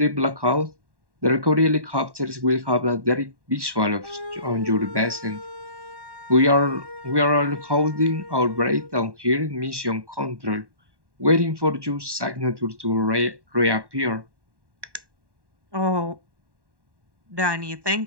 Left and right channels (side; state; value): left; late; 1.1 ms